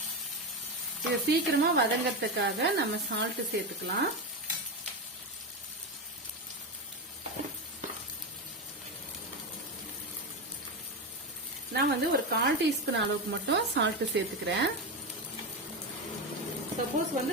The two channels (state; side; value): normal; both; correlation 0.15